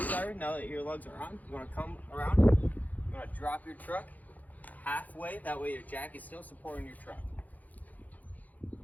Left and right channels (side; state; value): right; late; 0.079 ms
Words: tire, now that your lugs are on, you want to come around, you want to drop your truck halfway, that way your jack is still supporting your truck.